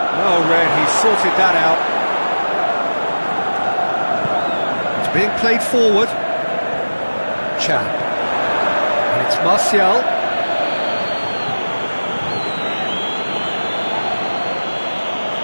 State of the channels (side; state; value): both; inverted; correlation -1.00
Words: Oh, Red, he sorted that out. It's being played forward. Chan. And it's Martial.